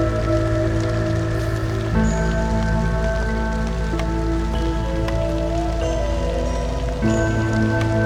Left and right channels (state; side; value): identical; both; correlation 1.00